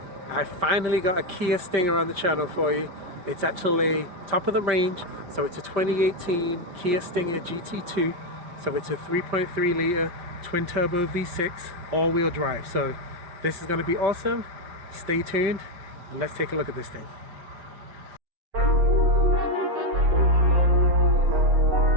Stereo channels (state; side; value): late; left; 5.1 ms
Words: I finally got a Kia Stinger on the channel for you. It's actually top of the range, so it's a 2018 Kia Stinger GT2. So it's a 3.3 liter twin turbo V6 all-wheel drive. So this is going to be awesome. Stay tuned and let's take a look at this thing.